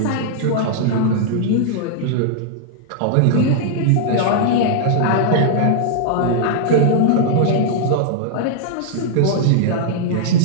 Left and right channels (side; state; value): both; different; correlation -0.01